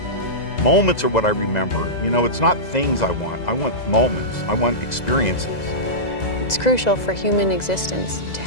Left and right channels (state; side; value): late; right; 2.0 ms